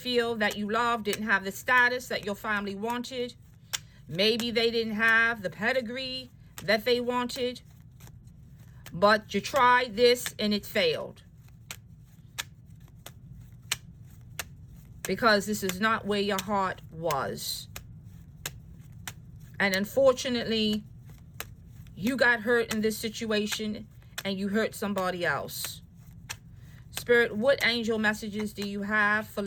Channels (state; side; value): identical; both; correlation 1.00